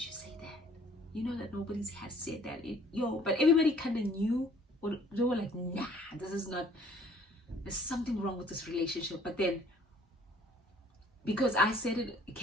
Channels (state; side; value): normal; both; correlation 0.56